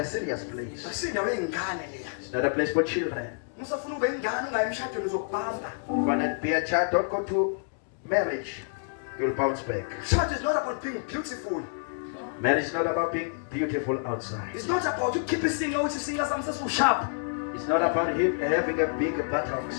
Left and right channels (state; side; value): silent; right; digital silence